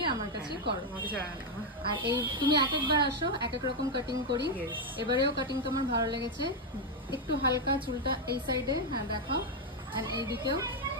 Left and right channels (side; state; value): both; normal; correlation 0.03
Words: আমার কাছেই করো। আমাকে ছাড়া না। আর এই তুমি এক একবার আসো, এক এক রকম কাটিং করি। Yes. এবারেও কাটিং তোমার ভালো লেগেছে। একটু হালকা চুলটা এই সাইডে, হ্যাঁ দেখাও, আর এইদিকেও